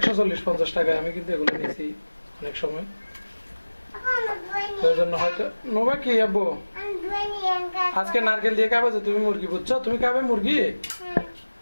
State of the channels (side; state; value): both; inverted; correlation -1.00